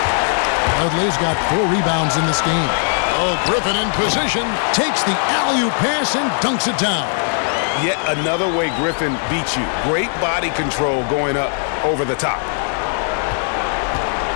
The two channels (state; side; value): silent; right; 57 dB below the other